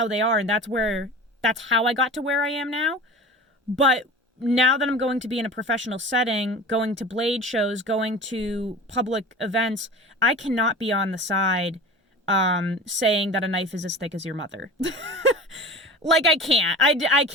they are, and that's how I got to where I am now. But now that I'm going to be in a professional setting, going to blade shows, going to public events, I cannot be on the side saying that a knife is as thick as your mother. Like, I can't. I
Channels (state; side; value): normal; both; correlation 0.35